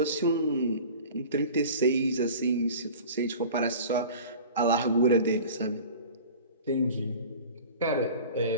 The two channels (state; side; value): inverted; both; correlation -0.40